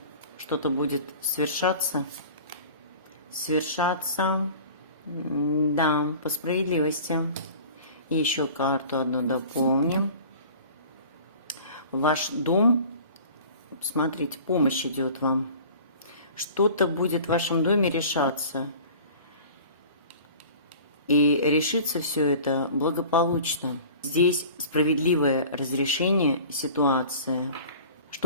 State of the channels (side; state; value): both; inverted; correlation -0.43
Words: Что-то будет свершаться? Свершаться, да, по справедливости. И еще карту одну дополним. Ваш дом, смотрите, помощь идет вам. Что-то будет в вашем доме решаться. И решится все это благополучно. Здесь справедливое разрешение ситуации.